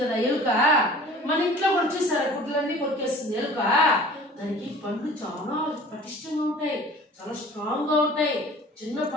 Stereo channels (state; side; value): normal; both; correlation 0.45